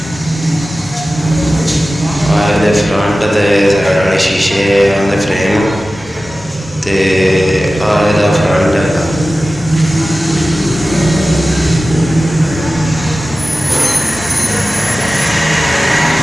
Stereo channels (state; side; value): normal; both; correlation 0.95